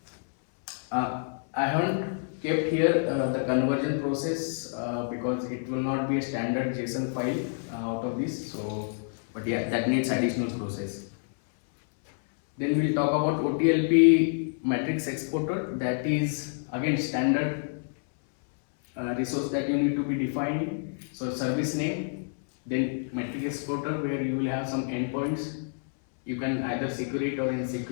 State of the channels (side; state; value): right; silent; 59 dB below the other